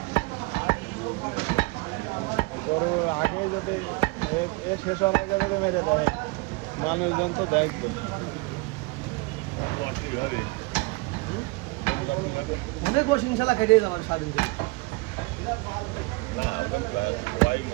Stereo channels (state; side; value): quieter; left; 25.2 dB